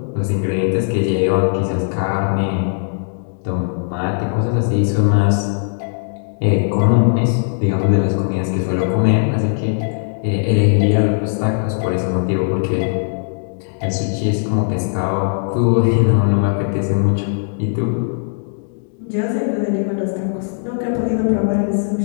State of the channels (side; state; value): right; silent; digital silence